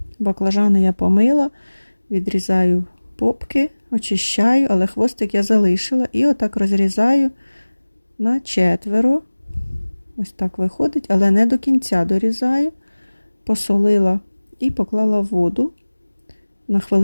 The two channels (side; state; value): both; inverted; correlation -1.00